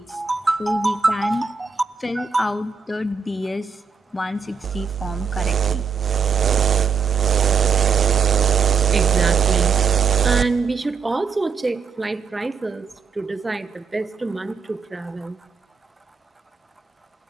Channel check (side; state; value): left; quieter; 5.6 dB